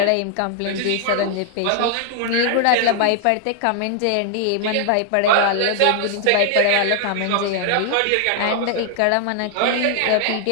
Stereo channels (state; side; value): different; both; correlation 0.00